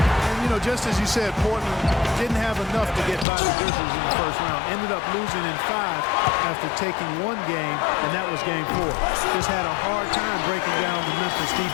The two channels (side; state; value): right; drops out; at 3.2 s